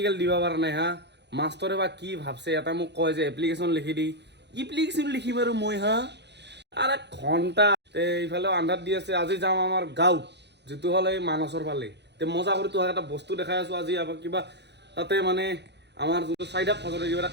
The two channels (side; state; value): left; late; 0.50 ms